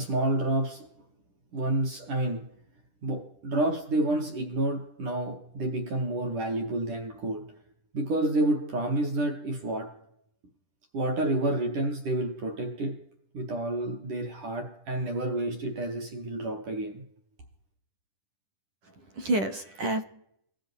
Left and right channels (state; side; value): late; left; 10 ms